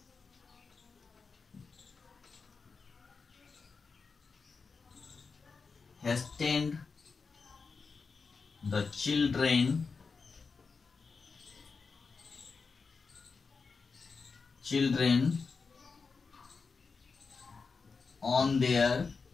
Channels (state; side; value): quieter; right; 4.8 dB